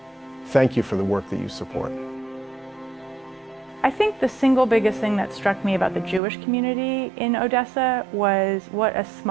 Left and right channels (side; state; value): left; drops out; at 6.2 s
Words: Thank you for the work that you support. I think the single biggest thing that struck me about the Jewish community in Odessa was what a